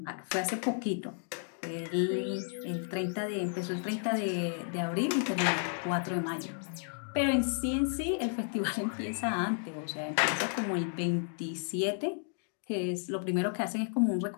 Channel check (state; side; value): silent; right; 56 dB below the other